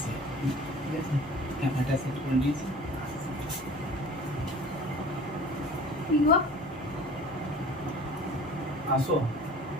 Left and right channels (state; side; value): normal; both; correlation 0.44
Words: ঠিক আছে? ক্যামেরাটা সেট করে নিয়েছি, আসছে। কি গো? আসো